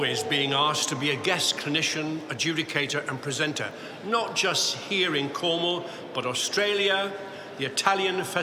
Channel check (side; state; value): both; identical; correlation 1.00